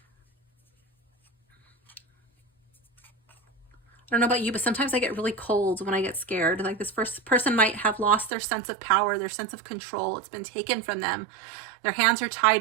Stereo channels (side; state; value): left; drops out; at 8.3 s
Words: I don't know about you, but sometimes I get really cold when I get scared. Like this first person might have lost their sense of power, their sense of control. It's been taken from them. Their hands are